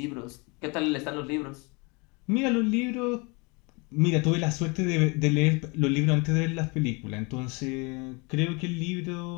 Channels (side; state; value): right; quieter; 29.2 dB